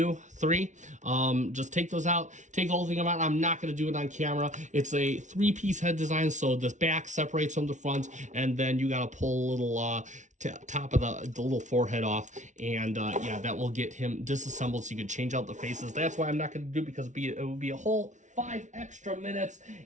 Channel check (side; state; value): left; late; 0.36 ms